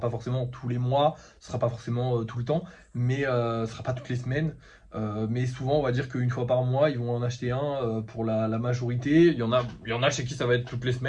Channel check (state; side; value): identical; both; correlation 1.00